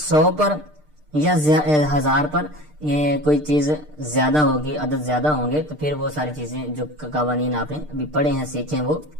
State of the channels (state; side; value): late; left; 6.6 ms